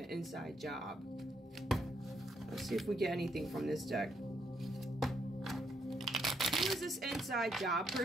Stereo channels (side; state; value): both; normal; correlation 0.75